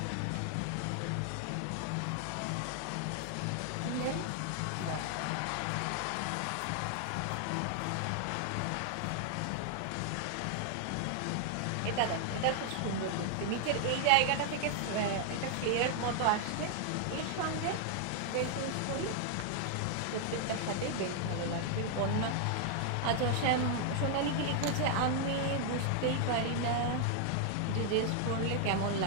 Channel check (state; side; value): different; both; correlation 0.00